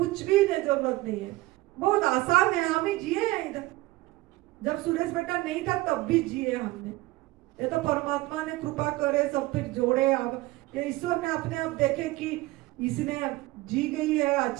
भी जरूरत नहीं है, बहुत आसान है। हम ही जिए हैं इधर, जब सुरेश बेटा नहीं था तब भी जिए हमने। ये तो परमात्मा ने कृपा करे, सब फिर जोड़े। अब ये ईश्वर ने अपने आप देखे कि इसने जी गई है,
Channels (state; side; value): quieter; left; 19.4 dB